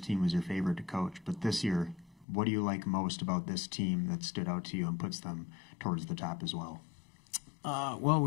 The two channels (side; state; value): right; drops out; at 2.2 s